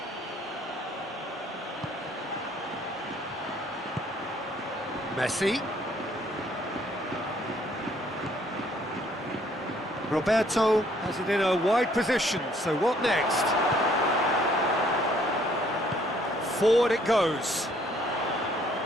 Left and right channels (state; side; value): normal; both; correlation 0.63